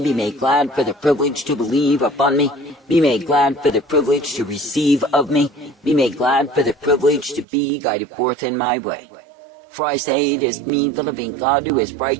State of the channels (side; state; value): left; drops out; at 7.5 s